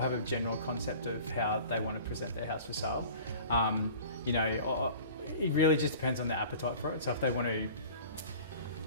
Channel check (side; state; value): both; inverted; correlation -0.43